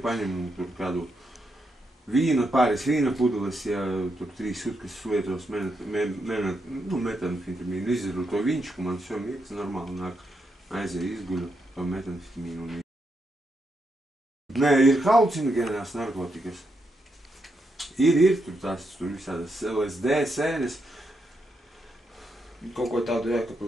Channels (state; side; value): normal; both; correlation 0.82